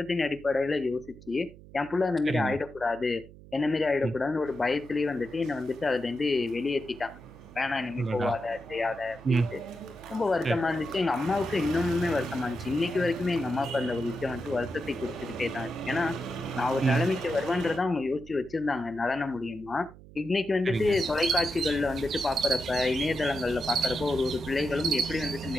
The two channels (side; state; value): right; noise; hum, 20 dB below the sound